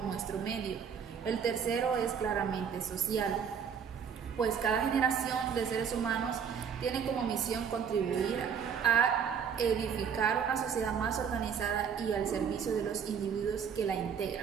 nuestro medio. El tercero es claramente social, pues cada generación de seres humanos tiene como misión contribuir a edificar una sociedad más organizada y al servicio de los individuos que la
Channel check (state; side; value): quieter; left; 7.3 dB